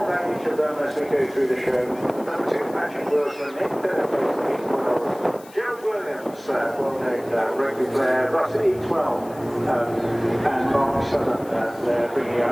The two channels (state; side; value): noise; left; hiss, 23 dB below the sound